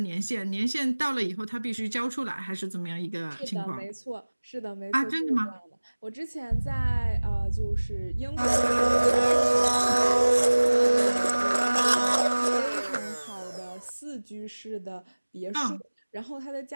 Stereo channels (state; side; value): inverted; both; correlation -1.00